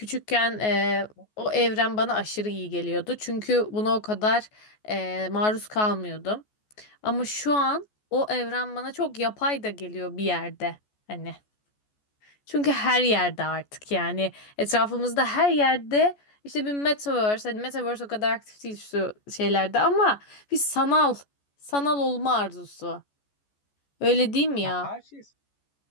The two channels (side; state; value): right; late; 14 ms